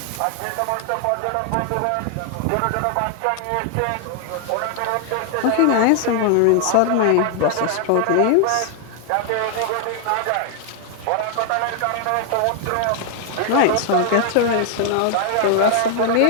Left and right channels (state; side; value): different; both; correlation 0.00